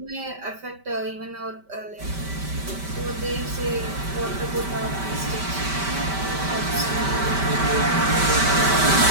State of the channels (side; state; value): left; late; 5.1 ms